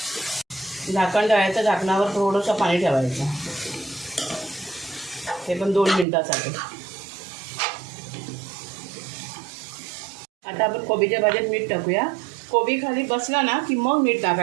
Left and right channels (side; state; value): left; drops out; at 6.1 s